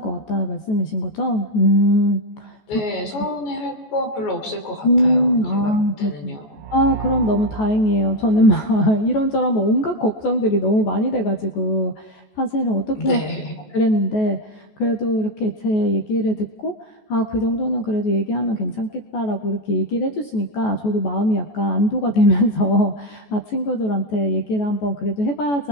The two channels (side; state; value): right; late; 14 ms